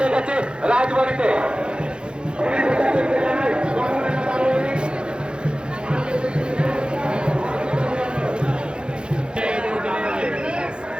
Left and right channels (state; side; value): late; left; 0.051 ms